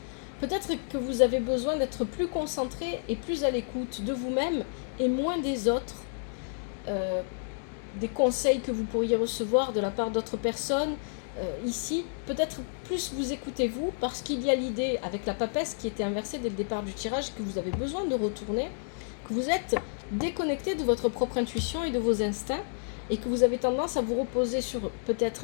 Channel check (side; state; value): right; silent; digital silence